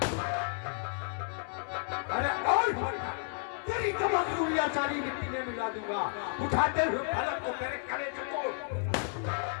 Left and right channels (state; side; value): silent; right; 56 dB below the other